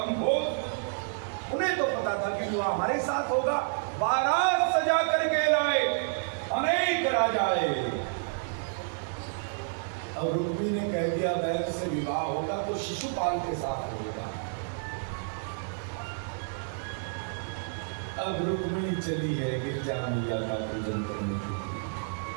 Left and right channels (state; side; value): silent; left; digital silence